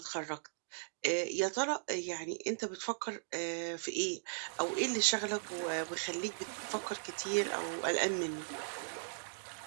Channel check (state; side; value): silent; left; digital silence